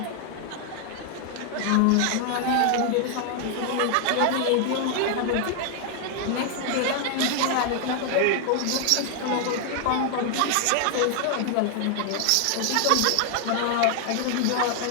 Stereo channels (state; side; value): different; both; correlation 0.00